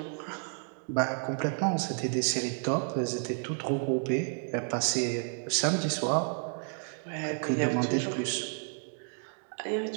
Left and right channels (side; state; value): left; silent; 56 dB below the other